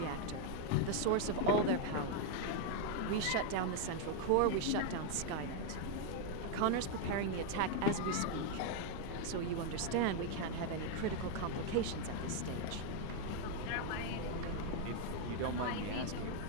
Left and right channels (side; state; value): both; different; correlation 0.01